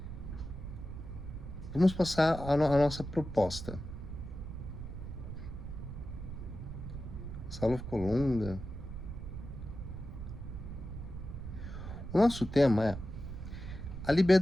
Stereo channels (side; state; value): right; noise; rumble, 8 dB below the sound